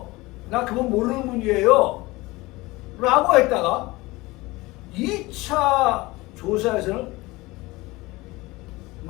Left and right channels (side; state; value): right; quieter; 21.3 dB